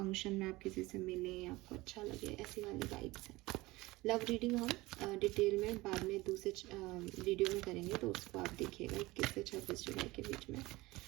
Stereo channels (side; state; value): left; quieter; 20.5 dB